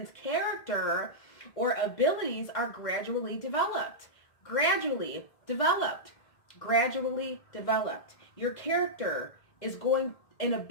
character or abilities are gradually developed. Gradually developed. Gradually developed. Your character is going and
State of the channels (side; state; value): right; late; 1.5 ms